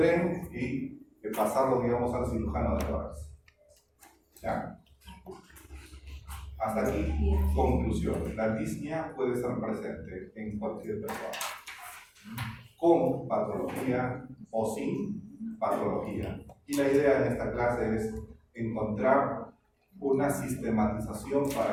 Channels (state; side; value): identical; both; correlation 1.00